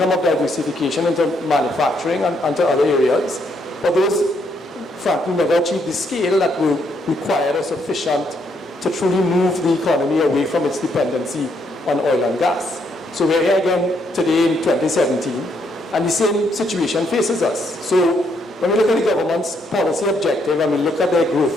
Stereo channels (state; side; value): normal; both; correlation 0.74